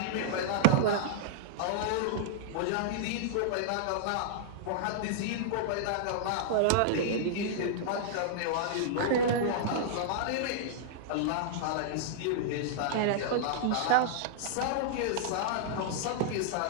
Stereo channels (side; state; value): both; different; correlation -0.01